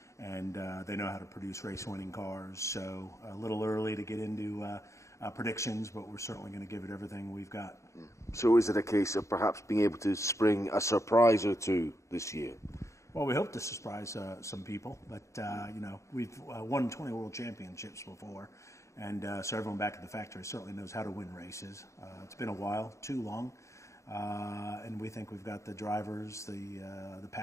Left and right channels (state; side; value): late; right; 0.14 ms